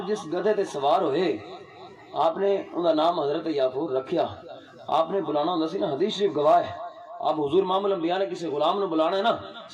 جس گدھے تے سوار ہوئے آپ نے ان کا نام حضرت یافور رکھیا. آپ نے بلانا ہوندا سی نا حدیث شریف گواہ ہے اب حضور امام الانبیاء نے کسی غلام نو بلانا ہے نا،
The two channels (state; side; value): identical; both; correlation 1.00